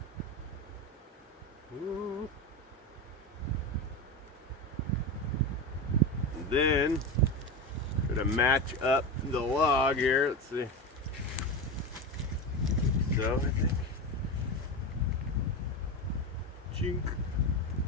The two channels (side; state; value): both; normal; correlation 0.19